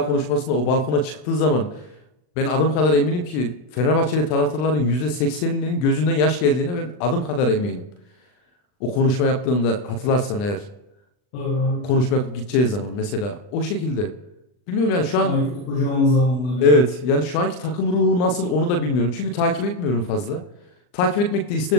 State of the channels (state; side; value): late; right; 40 ms